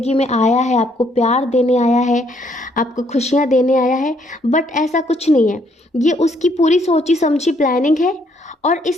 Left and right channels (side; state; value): both; normal; correlation 0.69